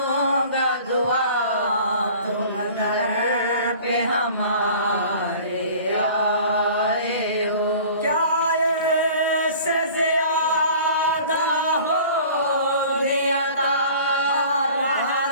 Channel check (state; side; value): inverted; both; correlation -0.45